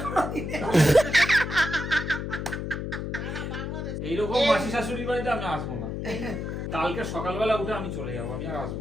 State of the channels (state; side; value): noise; left; hum, 4 dB below the sound